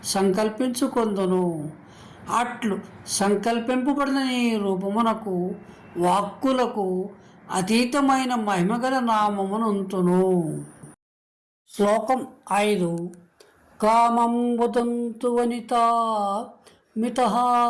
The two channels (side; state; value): both; identical; correlation 1.00